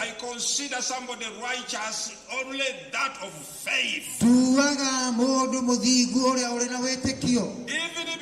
consider somebody righteous only that of faith. Even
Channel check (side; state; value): both; identical; correlation 1.00